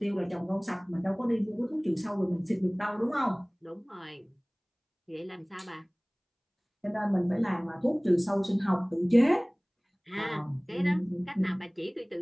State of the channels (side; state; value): both; identical; correlation 1.00